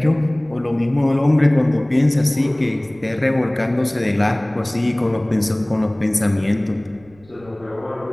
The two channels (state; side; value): noise; right; rumble, 27 dB below the sound